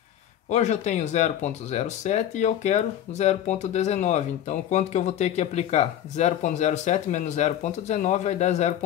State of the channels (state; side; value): quieter; right; 11.0 dB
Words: Hoje eu tenho 0,07 e eu quero 0,19. Então quanto que eu vou ter que aplicar? 0,07 menos 0,19 vai dar